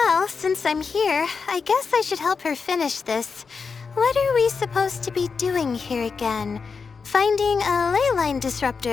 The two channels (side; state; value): right; quieter; 5.2 dB